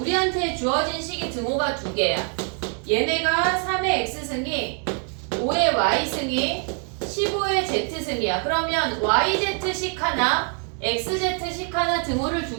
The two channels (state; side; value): quieter; left; 39.7 dB